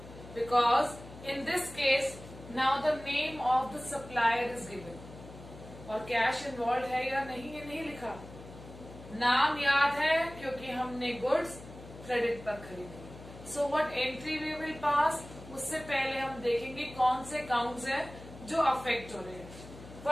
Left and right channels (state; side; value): noise; left; hum, 16 dB below the sound